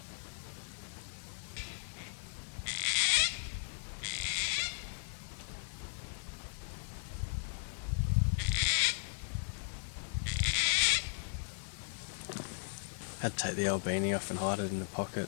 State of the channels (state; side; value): silent; right; digital silence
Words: Had to take the old beanie off and hide it in the pocket